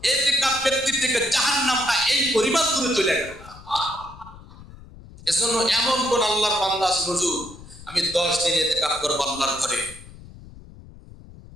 ইতিকাফ ব্যক্তির থেকে জাহান্নামটা এই পরিমাণ দূরে চলে গেল। এজন্য এমন কোন আল্লাহর বান্দা আছে হুজুর আমি ১০ দিন ইতিকাফ করব আল্লাহর ঘরে?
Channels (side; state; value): left; noise; rumble, 19 dB below the sound